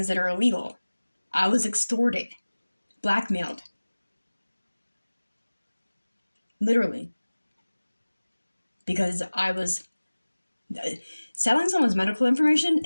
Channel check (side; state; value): both; inverted; correlation -1.00